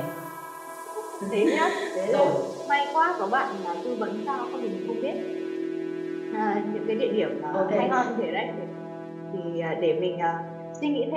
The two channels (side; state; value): both; identical; correlation 1.00